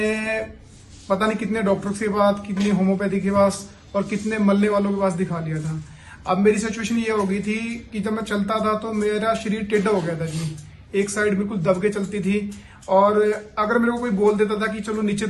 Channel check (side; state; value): both; identical; correlation 1.00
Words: पता नहीं कितने डॉक्टर के पास, कितने होम्योपैथी के पास और कितने मल्ले वालों के पास दिखा लिया था। अब मेरी सिचुएशन ये हो गई थी कि जब मैं चलता था तो मेरा शरीर टेढ़ा हो गया था जी, एक साइड बिल्कुल दब के चलती थी। और अगर मेरे को कोई बोल देता था कि चलो नीचे